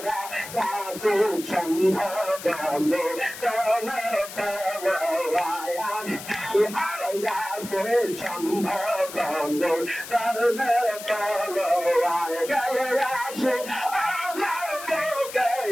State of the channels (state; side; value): noise; left; hiss, 12 dB below the sound